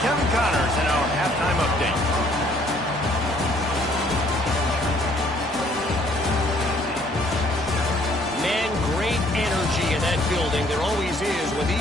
Kevin Connors in our halftime update. Man, great energy in that building. There always is when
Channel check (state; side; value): normal; both; correlation 0.62